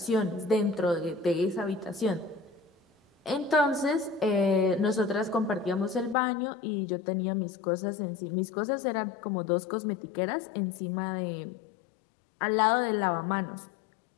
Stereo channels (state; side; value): drops out; right; at 6.2 s